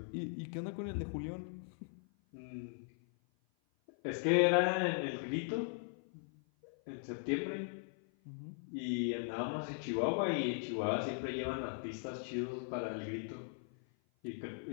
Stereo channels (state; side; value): silent; right; 52 dB below the other